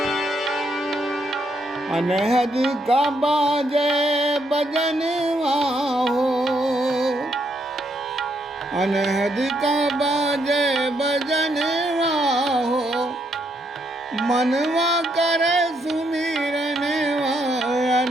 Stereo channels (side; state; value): both; normal; correlation 0.75